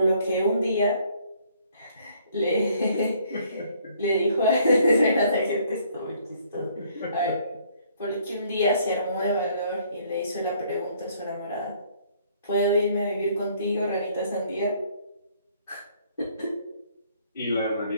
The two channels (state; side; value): inverted; both; correlation -0.63